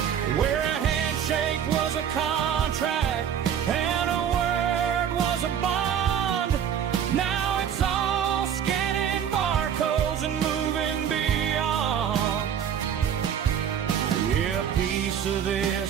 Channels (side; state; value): left; quieter; 8.8 dB